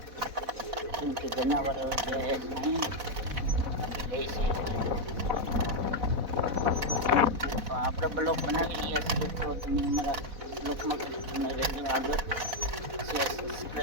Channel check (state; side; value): late; left; 4.1 ms